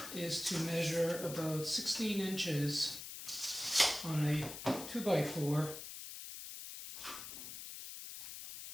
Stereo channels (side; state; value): left; noise; hiss, 9 dB below the sound